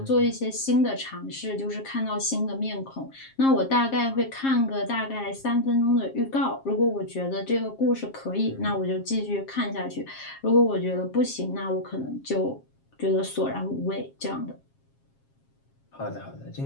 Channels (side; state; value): right; late; 7.4 ms